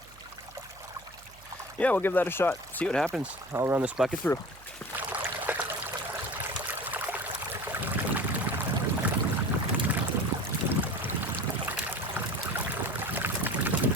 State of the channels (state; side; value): noise; right; hum, 23 dB below the sound